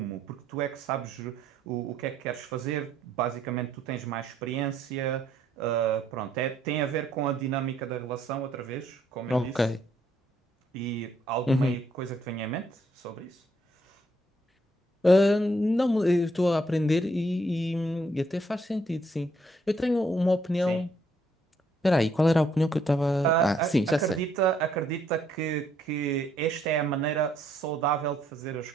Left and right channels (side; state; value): both; normal; correlation 0.70